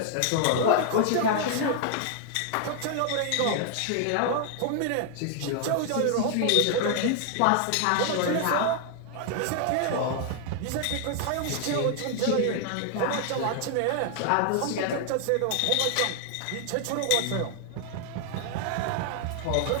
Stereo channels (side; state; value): both; different; correlation 0.00